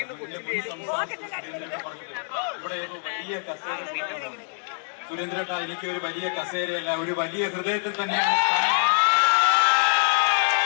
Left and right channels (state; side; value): silent; right; 61 dB below the other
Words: ഇവിടെ വലിയ കസേര. സുരേന്ദ്രേട്ട, എനിക്ക് ഒരു വലിയ കസേരയല്ല, ഒരു വലിയ ഹൃദയത്തിൽ തന്നെയാണ്.